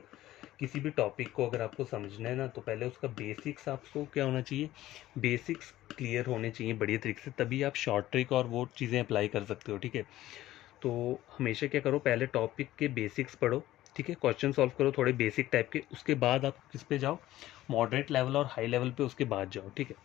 किसी भी टॉपिक को अगर आपको समझना है ना, तो पहले उसका बेसिक्स आपको क्या होना चाहिए, बेसिक्स क्लियर होने चाहिए बढ़िया तरीके से, तभी आप शॉर्ट ट्रिक और वो चीज़ें अप्लाई कर सकते हो, ठीक है। तो हमेशा क्या करो, पहले टॉपिक के बेसिक्स पढ़ो, ठीक है, क्वेश्चन सॉल्व करो थोड़े बेसिक टाइप के, उसके बाद आप किस पे जाओ, मॉडरेट लेवल और हाई लेवल पे उसके बाद जाओ, ठीक है।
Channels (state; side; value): quieter; right; 15.0 dB